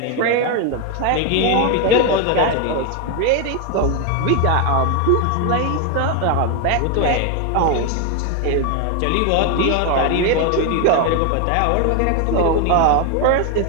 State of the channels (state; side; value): different; both; correlation 0.01